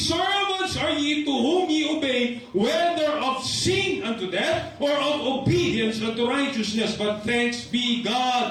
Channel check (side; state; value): both; identical; correlation 1.00